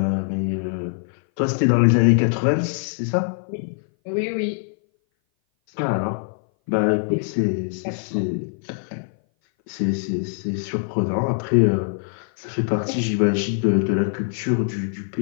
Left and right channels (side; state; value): right; silent; 58 dB below the other